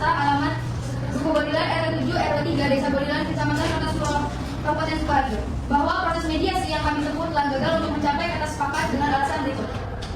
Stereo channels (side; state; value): both; identical; correlation 1.00